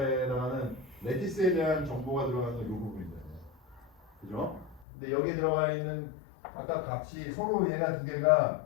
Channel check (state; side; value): drops out; right; at 4.9 s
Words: 해당하는 레티스에 대한 정보가 들어가는 건 요 부분이잖아요. 그죠? 근데 여기에 들어가 있는 각각 값이 서로 얘가 두 개가